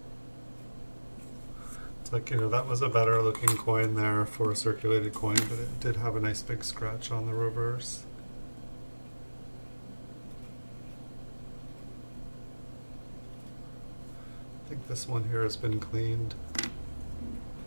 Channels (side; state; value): both; inverted; correlation -1.00